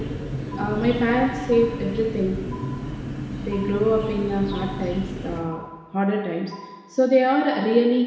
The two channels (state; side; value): identical; both; correlation 1.00